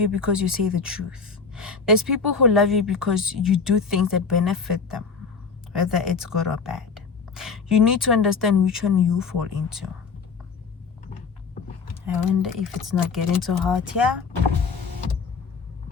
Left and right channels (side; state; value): right; quieter; 5.2 dB